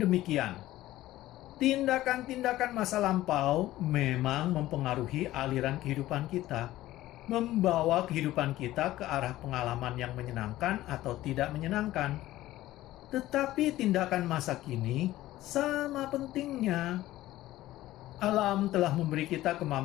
demikian. Tindakan-tindakan masa lampau memang mempengaruhi aliran kehidupan kita, membawa kehidupan kita ke arah pengalaman yang menyenangkan atau tidak menyenangkan. Tetapi tindakan masa kini sama pentingnya. Alam telah memberi kita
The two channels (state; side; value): quieter; right; 15.6 dB